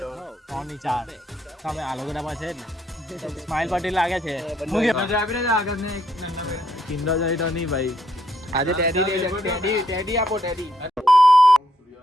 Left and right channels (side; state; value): both; normal; correlation 0.74